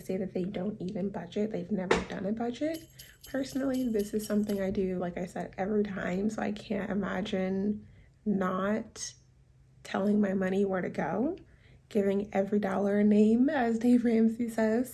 that they don't even budget. They've never done a budget. Personally, this is something I do, like I said, every time. So I can't imagine not telling my money where to go, giving every dollar a name, as Dave Ramsey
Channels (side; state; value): both; identical; correlation 1.00